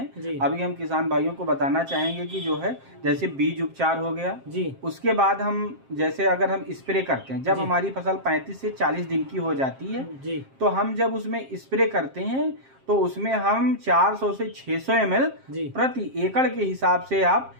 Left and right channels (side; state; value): left; late; 7.5 ms